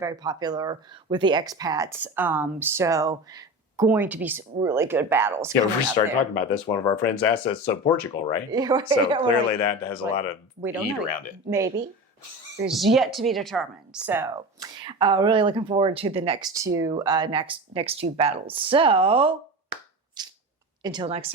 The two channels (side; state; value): both; normal; correlation 0.28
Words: popular with the expats. So going to be some really good battles. Yeah, we started talking about this. One of our friends asked us, so Portugal, right? So clearly that has a lot of heat around it. Maybe. is yet to be determined. So, really looking forward to the next two battles. So, until next